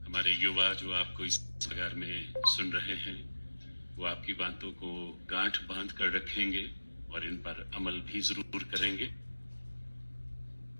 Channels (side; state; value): both; inverted; correlation -1.00